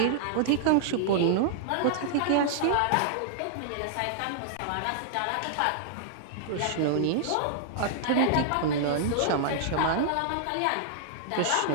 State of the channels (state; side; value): different; both; correlation -0.01